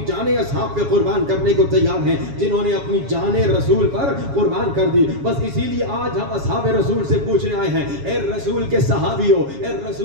جانیں اصحاب پہ قربان کرنے کو تیار ہیں جنہوں نے اپنی جانیں رسول پر قربان کر دی. بس اسی لیے آج ہم اصحاب رسول سے پوچھنے آئے ہیں, اے رسول کے صحابیوں, اے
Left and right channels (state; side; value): late; left; 7.2 ms